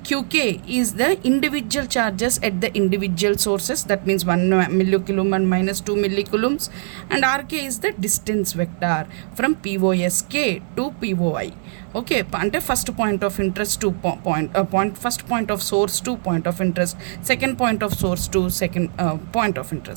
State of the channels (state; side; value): silent; left; digital silence